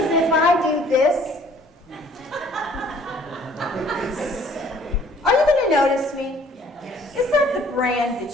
if I do this, are you going to notice me? Yes. Is that the brand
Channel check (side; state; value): both; normal; correlation 0.57